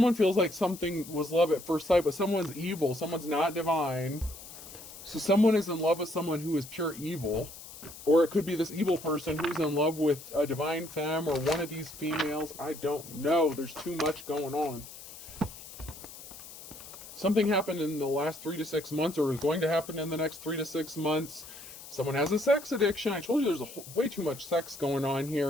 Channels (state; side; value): noise; left; hiss, 15 dB below the sound